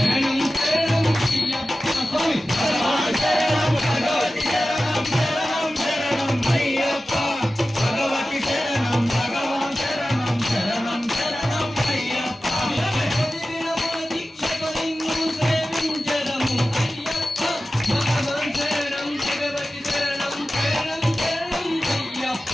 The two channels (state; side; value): normal; both; correlation 0.95